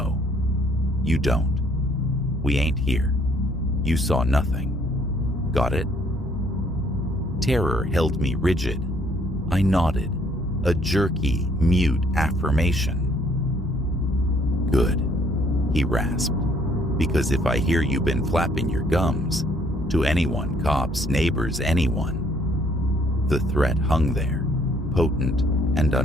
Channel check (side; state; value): both; normal; correlation 0.65